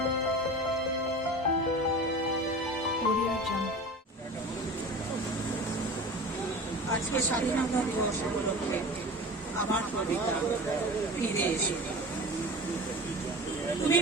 Audio Jungle. আজকে স্বাধীনতা দিবস উপলক্ষে আমার কবিতা ফিরে এসো। তুমি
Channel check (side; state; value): both; normal; correlation 0.35